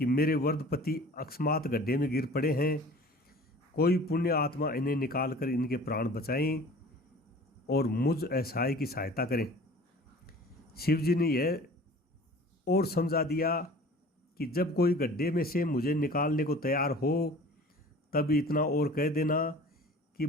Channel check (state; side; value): normal; both; correlation 0.44